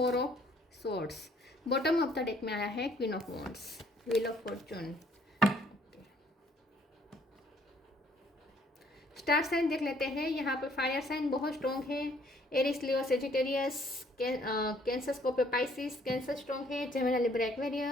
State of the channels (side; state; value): both; normal; correlation 0.62